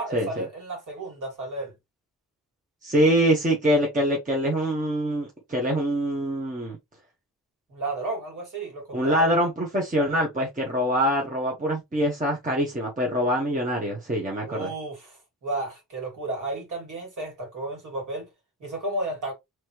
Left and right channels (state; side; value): normal; both; correlation 0.31